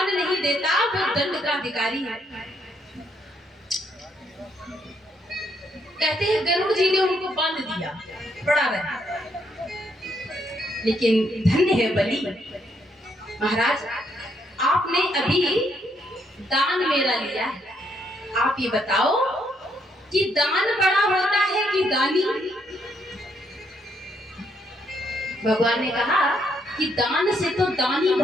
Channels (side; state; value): both; normal; correlation 0.73